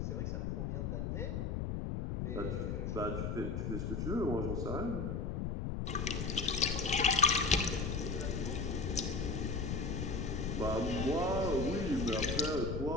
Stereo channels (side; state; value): left; noise; rumble, 1 dB below the sound